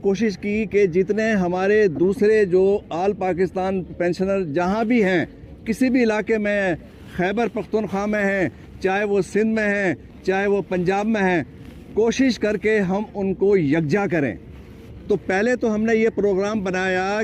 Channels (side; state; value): both; identical; correlation 1.00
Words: की कि जितने हमारे दूसरे जो आल पाकिस्तान पेंशनर जहाँ भी हैं, किसी भी इलाके में, खैबर पख्तूनख्वा में हैं, चाहे वो सिंध में हैं, चाहे वो पंजाब में हैं, कोशिश करके हम उनको यकजा करें। तो पहले तो हमने ये प्रोग्राम बनाया